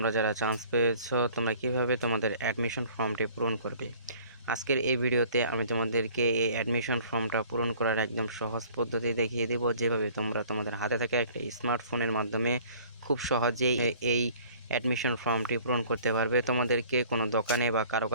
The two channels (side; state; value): both; inverted; correlation -0.52